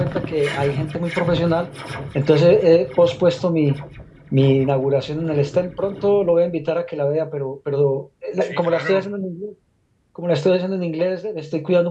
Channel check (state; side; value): identical; both; correlation 1.00